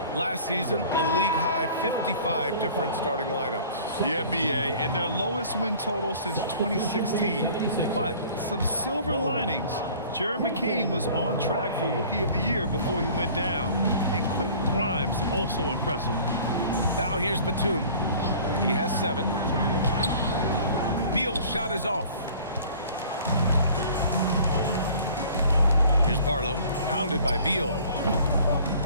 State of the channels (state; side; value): inverted; both; correlation -0.48